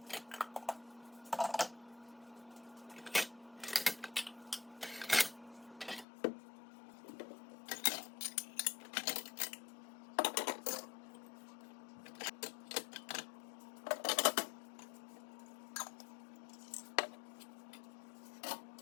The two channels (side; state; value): right; drops out; at 6.1 s